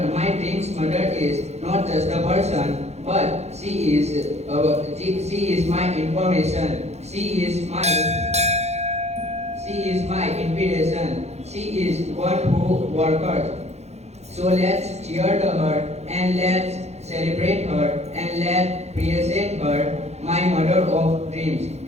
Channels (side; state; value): left; late; 0.31 ms